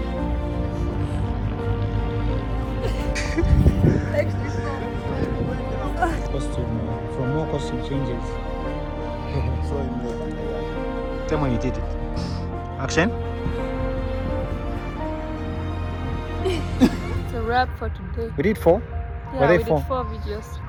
Costume, from more costume changes. Tell me when you did it. Action. It's a wrap for today. We did 4? Yeah, Were they we 4? did 4 videos.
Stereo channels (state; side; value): identical; both; correlation 1.00